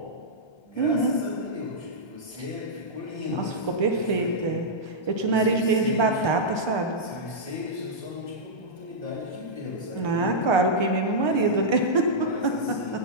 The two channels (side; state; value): right; late; 1.3 ms